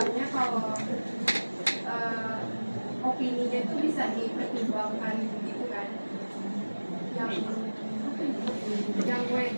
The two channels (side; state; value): both; inverted; correlation -1.00